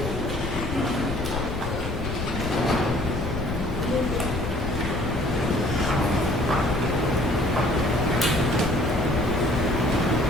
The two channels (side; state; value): left; noise; rumble, 6 dB below the sound